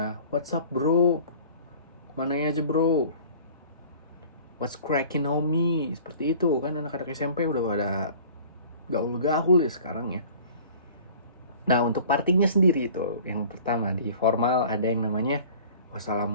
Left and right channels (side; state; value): both; inverted; correlation -0.46